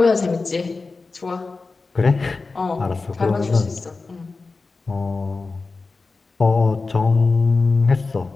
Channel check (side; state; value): right; quieter; 3.9 dB